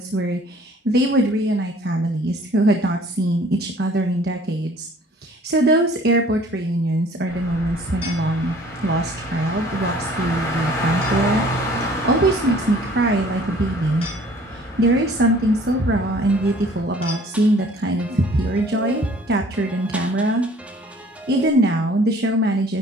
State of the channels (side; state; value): both; normal; correlation 0.53